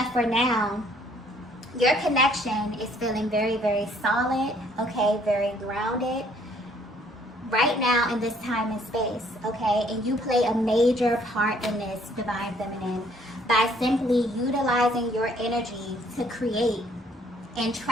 for now, your connection is feeling very, very solid, okay? Very grounded right now in this time and space, okay? And you play a major part in this, Divine Feminine, by simply utilizing your energy to create and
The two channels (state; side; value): normal; both; correlation 0.63